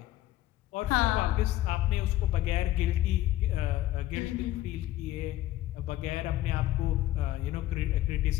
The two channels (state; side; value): quieter; right; 14.8 dB